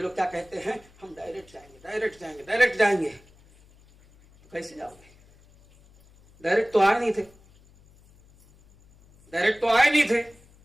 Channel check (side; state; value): left; noise; hum, 28 dB below the sound